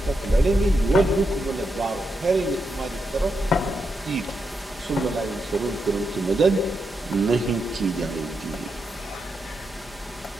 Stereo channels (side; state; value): both; normal; correlation 0.84